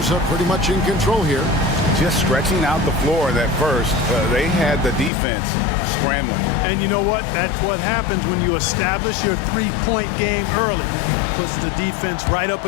are pretty much in control here. Just stretching out the floor that first. They had the defense scrambling. And you know what? That's what happens when you establish your three-point game early. Puts the defense right up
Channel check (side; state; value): right; drops out; at 5.1 s